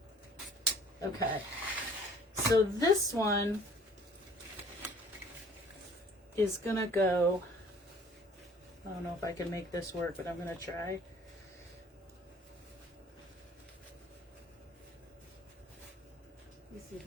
Okay. So this one is going to go. I don't know if I can make this work, but I'm going to try. This is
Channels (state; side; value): normal; both; correlation 0.53